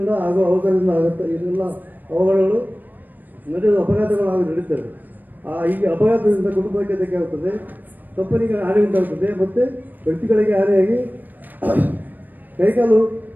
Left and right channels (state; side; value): late; left; 0.088 ms